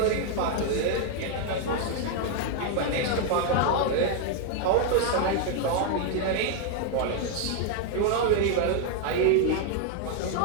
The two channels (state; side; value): different; both; correlation 0.00